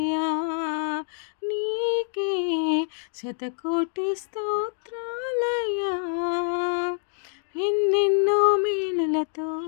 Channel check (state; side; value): silent; right; digital silence